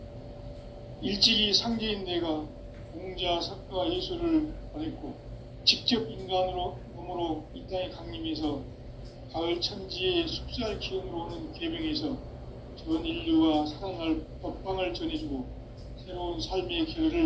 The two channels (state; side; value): identical; both; correlation 1.00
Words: 일찍이 상제인 내가 공자, 석가, 예수를 보냈고 직접 인간으로 몸으로 이 땅에 강림해서 가을 천지의 숲살 기운으로 오는 계명에서 전 인류와 살아날 법방을 전해주고 새로운 삶의